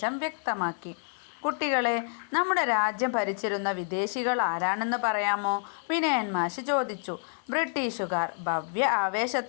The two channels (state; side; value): silent; right; 59 dB below the other